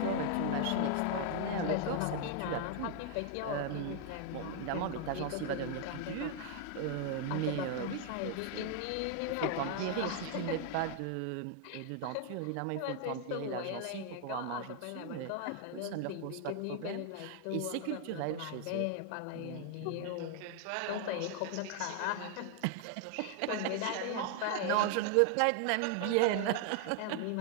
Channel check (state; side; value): different; both; correlation 0.00